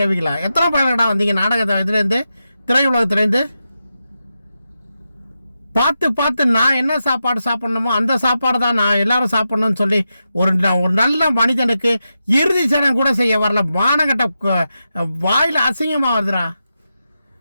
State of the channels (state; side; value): inverted; both; correlation -0.89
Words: எத்தனை பயணடா வந்தீங்க? நாடகத்தை இதுலேருந்து, திரையுலகத்துலேருந்து பார்த்து நான் என்ன சாப்பாடு சாப்பிடணுமோ அந்த சாப்பாடு தான் நான் எல்லாரும் சாப்பிடணும்னு சொல்லி ஒரு நல்ல மனிதனுக்கு இறுதி சடங்கு கூட செய்ய வரல. மானகட்ட வாயில் அசிங்கமாக வருதுடா.